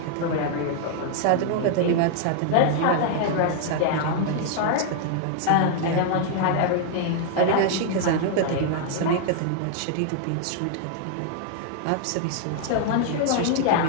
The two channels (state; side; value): different; both; correlation 0.00